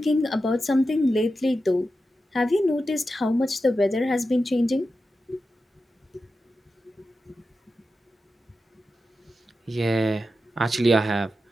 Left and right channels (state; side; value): normal; both; correlation 0.91